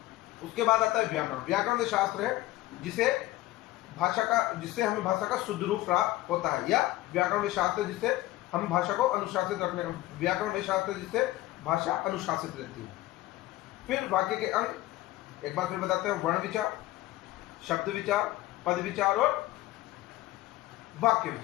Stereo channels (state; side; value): quieter; right; 16.9 dB